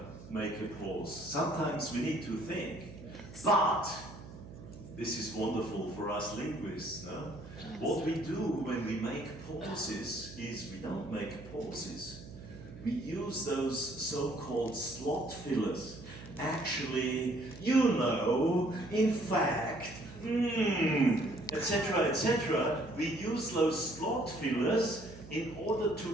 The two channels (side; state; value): right; noise; hum, 15 dB below the sound